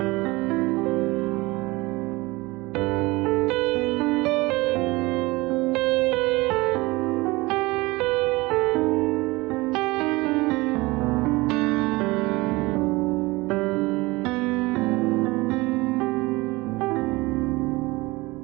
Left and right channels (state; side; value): quieter; left; 22.3 dB